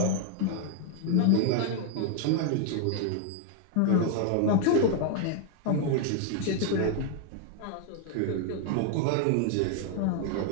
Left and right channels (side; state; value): both; different; correlation 0.00